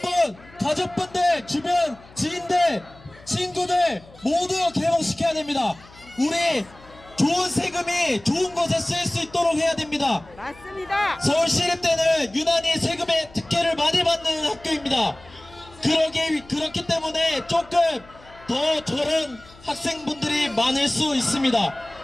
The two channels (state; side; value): noise; left; hum, 23 dB below the sound